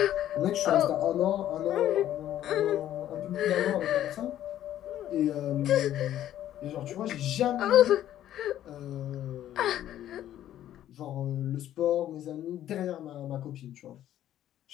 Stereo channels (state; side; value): quieter; right; 12.0 dB